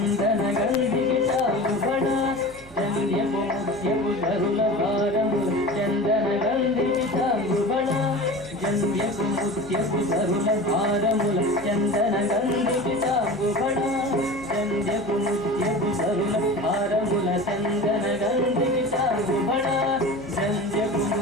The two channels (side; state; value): right; noise; hum, 21 dB below the sound